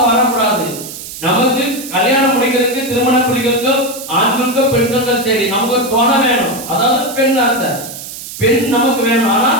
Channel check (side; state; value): right; noise; hiss, 11 dB below the sound